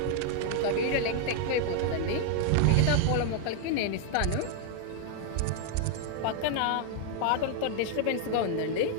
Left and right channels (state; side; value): different; both; correlation 0.00